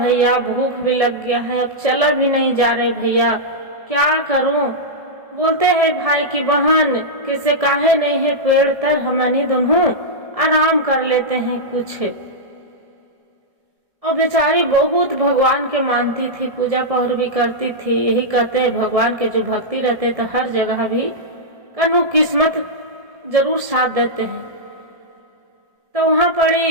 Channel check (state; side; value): late; left; 1.7 ms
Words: भूख भी लग गया है, अब चला भी नहीं जा रहे भैया, क्या करूं। बोलते हैं भाई की बहन किसे काहे नहीं है पेड़ तर हमनी दोनों आराम कर लेते हैं कुछ। और बेचारी बहुत भगवान के मानती थी, पूजा पहर भी करती थी। यही कहते हैं भगवान के जो भक्ति रहते तो हर जगह भी कनु किस्मत जरूर साथ देते हैं। तो वहां पड़ी